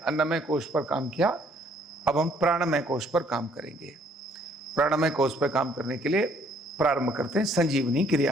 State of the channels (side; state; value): both; normal; correlation 0.64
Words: कोश पर काम किया, अब हम प्राणमय कोश पर काम करेंगे। प्राणमय कोश पर काम करने के लिए प्रारंभ करते हैं संजीवनी